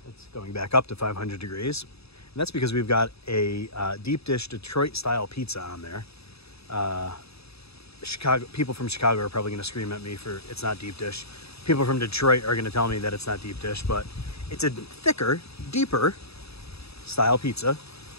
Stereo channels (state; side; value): late; right; 0.78 ms